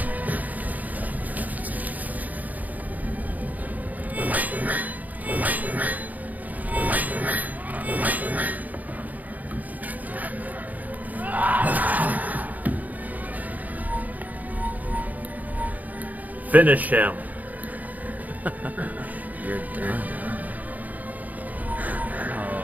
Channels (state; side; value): late; left; 0.078 ms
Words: Finish him. You're done.